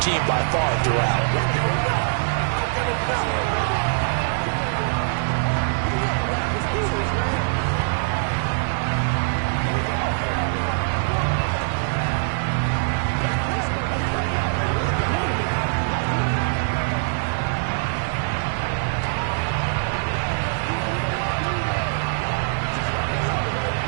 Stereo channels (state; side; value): silent; left; digital silence